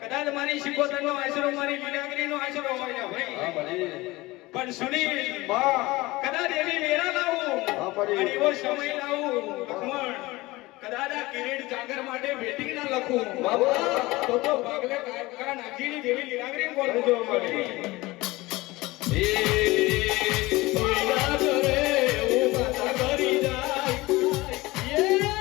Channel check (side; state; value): right; quieter; 20.6 dB